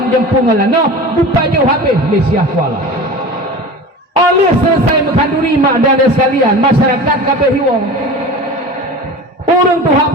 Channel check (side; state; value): both; normal; correlation 0.34